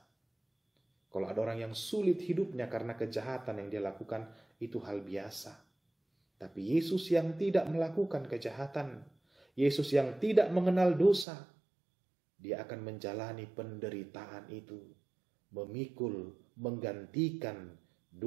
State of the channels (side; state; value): left; drops out; at 11.2 s